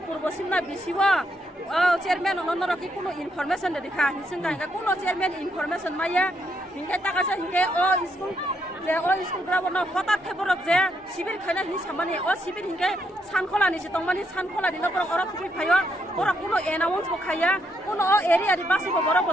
purbo simna bisiwa chairman onoro ki kuno information de dikha hisinga nga kuno chairman information maya hingke takasa hingke school যে school ground হঠাৎ খেবরক যে শিবির খাইনা হি সামানি শিবির হিংকে সানখলানি সে তংমানি সানখলানি নকর or ফুই খাইয়া ওরা কোনো announce বখাইয়া কোনো এরিয়ারি বাসিব বড়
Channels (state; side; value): normal; both; correlation 0.76